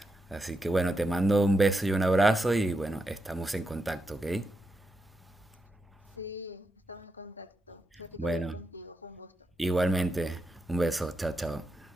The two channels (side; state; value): both; normal; correlation 0.85